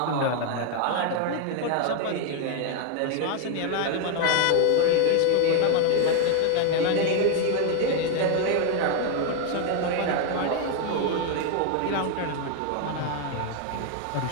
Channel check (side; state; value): both; different; correlation 0.01